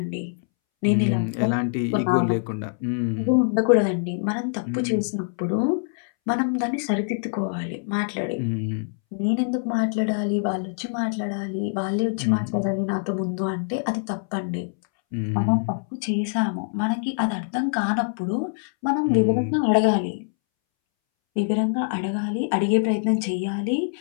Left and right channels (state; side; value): silent; right; 62 dB below the other